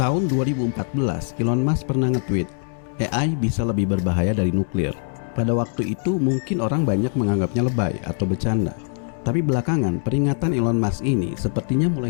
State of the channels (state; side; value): silent; right; 59 dB below the other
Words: Tahun 2014, Elon Musk pernah nge-tweet, AI bisa lebih berbahaya dari nuklir. Pada waktu itu mungkin orang banyak menganggapnya lebay atau bercanda. Tapi belakangan peringatan Elon Musk ini sepertinya